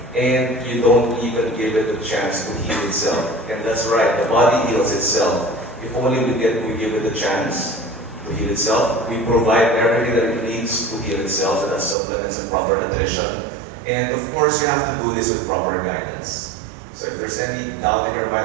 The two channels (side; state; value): left; drops out; at 12.0 s